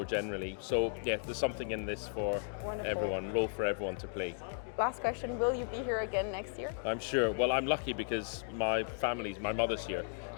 generally. So yeah, there's something in this for everyone, role for everyone to play. Last question, will you be here again next year? I'm sure. Well, I'm lucky because my mother's here,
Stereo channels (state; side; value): silent; right; digital silence